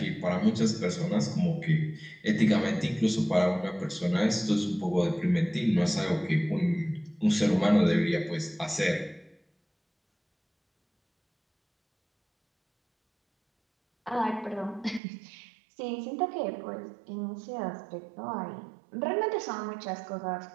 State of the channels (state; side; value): drops out; left; at 15.0 s